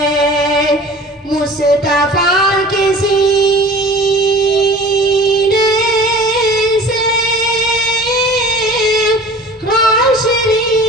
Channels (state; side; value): normal; both; correlation 0.43